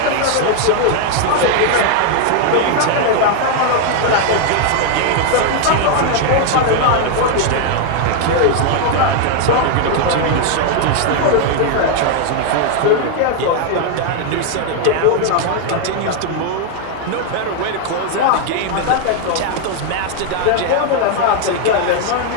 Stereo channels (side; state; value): both; different; correlation 0.00